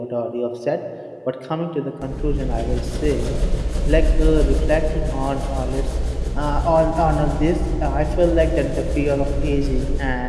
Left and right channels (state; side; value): identical; both; correlation 1.00